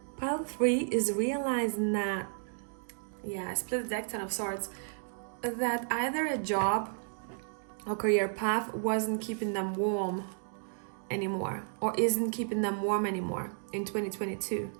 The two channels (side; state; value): left; silent; digital silence